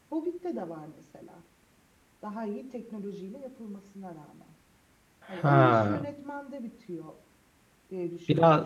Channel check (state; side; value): identical; both; correlation 1.00